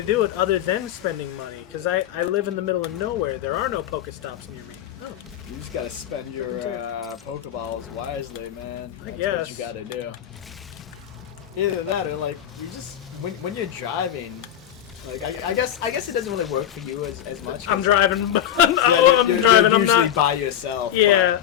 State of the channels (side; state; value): right; quieter; 10.7 dB